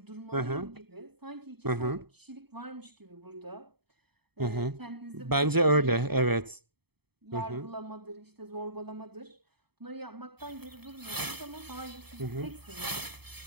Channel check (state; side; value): late; left; 0.97 ms